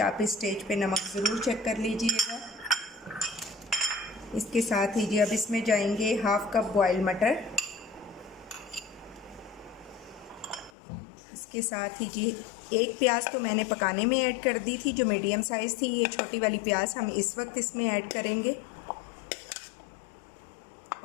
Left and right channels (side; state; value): right; drops out; at 10.7 s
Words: आप इस स्टेज पे नमक ज़रूर चेक कर लीजिएगा। इसके साथ ही जी अब इसमें जाएंगे हाफ़ कप बॉयल मटर। इसके साथ ही जी एक प्याज तो मैंने पकाने में ऐड कर दी थी, जो मीडियम साइज़ थी। ये छोटी वाली प्याज हम इस वक्त इसमें ऐड करेंगे।